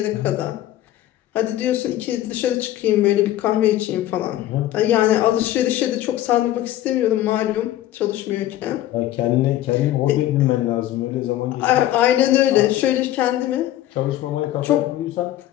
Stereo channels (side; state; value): right; quieter; 13.7 dB